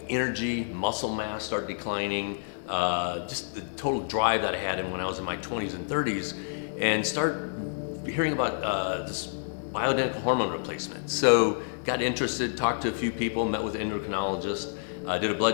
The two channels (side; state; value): right; silent; digital silence